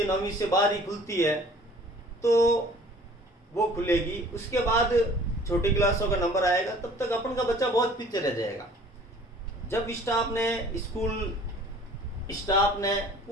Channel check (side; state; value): both; normal; correlation 0.51